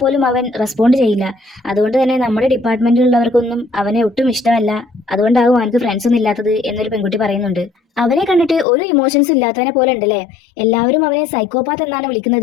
അവൻ റെസ്പോണ്ട് ചെയ്യില്ല. അതുകൊണ്ട് തന്നെ നമ്മുടെ ഡിപ്പാർട്ട്മെന്റിലുള്ളവർക്കൊന്നും അവനെ ഒട്ടും ഇഷ്ടമല്ല. അതുകൊണ്ടാകും അവനക്ക് ഫ്രണ്ട്സ് ഒന്നും ഇല്ലാത്തത് എന്നൊരു പെൺകുട്ടി പറയുന്നുണ്ട്. അവനെ കണ്ടിട്ട് ഒരു ഇമോഷൻസ് ഇല്ലാത്തവനെ പോലെ ഉണ്ടല്ലേ, എല്ലാവരും അവനെ സൈക്കോപാത്ത് എന്നാണ്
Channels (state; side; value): drops out; right; at 8.7 s